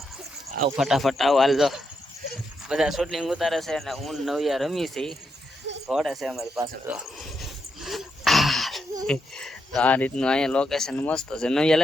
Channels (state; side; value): normal; both; correlation 0.82